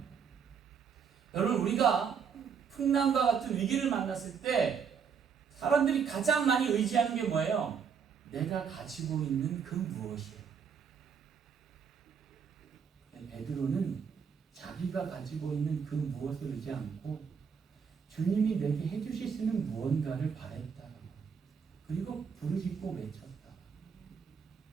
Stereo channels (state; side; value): quieter; left; 6.7 dB